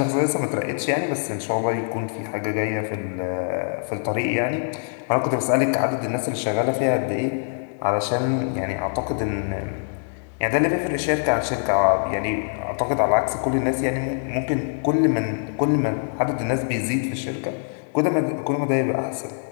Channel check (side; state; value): right; silent; 63 dB below the other